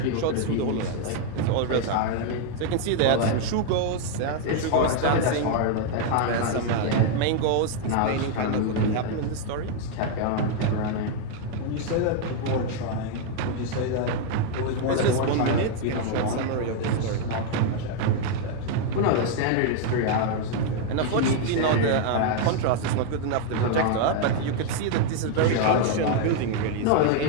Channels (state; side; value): different; both; correlation 0.00